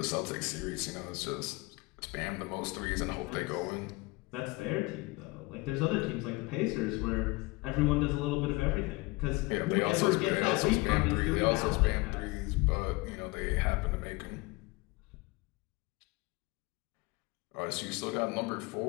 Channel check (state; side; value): quieter; right; 23.9 dB